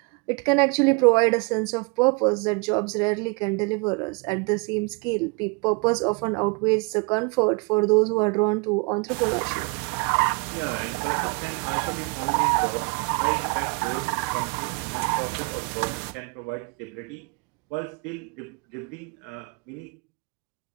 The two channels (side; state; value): left; quieter; 30.8 dB